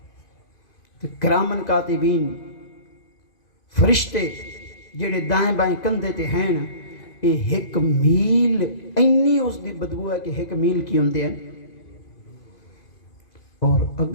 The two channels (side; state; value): right; late; 2.0 ms